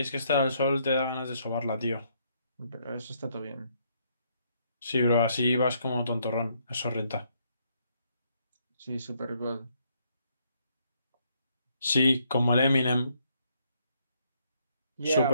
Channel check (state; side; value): inverted; both; correlation -0.71